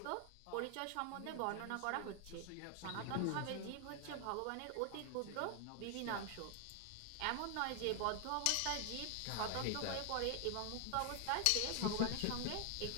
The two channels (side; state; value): both; different; correlation 0.00